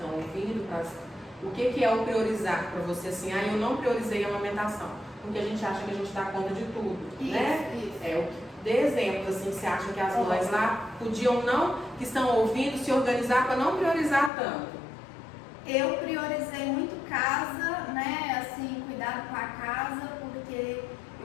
ouvindo, o que é o priorizar para você, assim, eu não priorizei a amamentação, porque a gente acha que a gente dá conta de tudo, né? Isso. Dê exemplos, assim, você acha que as mães lá podiam que estão ouvindo, se organizar para não priorizar tanto? Eu priorizei muito casa, né, assim, cuidado com a casa, porque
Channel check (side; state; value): right; drops out; at 14.3 s